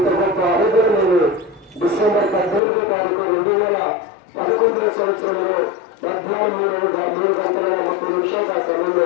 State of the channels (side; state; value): right; drops out; at 2.6 s